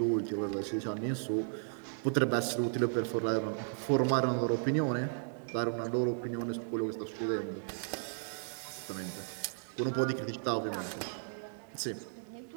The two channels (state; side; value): silent; left; digital silence